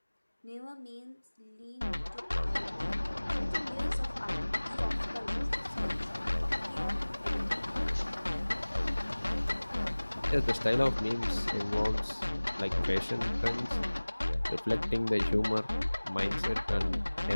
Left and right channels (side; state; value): both; inverted; correlation -1.00